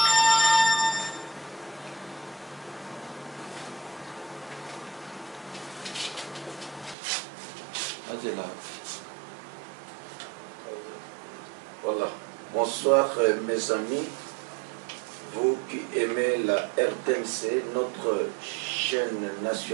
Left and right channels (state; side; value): drops out; left; at 7.0 s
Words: Voilà. Bonsoir mes amis, vous qui aimez la RTNC, notre chaîne